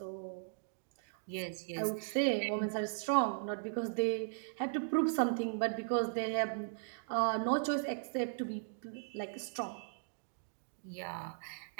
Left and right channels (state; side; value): silent; left; digital silence